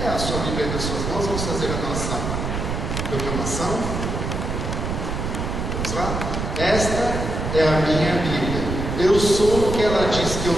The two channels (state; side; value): noise; right; rumble, 3 dB below the sound